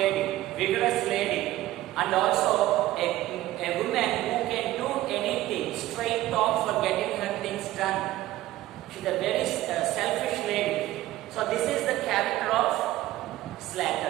vigorous lady, and also a woman who can do anything, straight talk for getting her things done. She is a very character of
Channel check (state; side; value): quieter; left; 15.7 dB